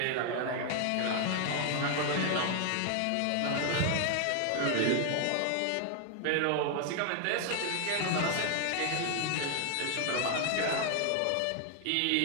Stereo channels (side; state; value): both; different; correlation 0.00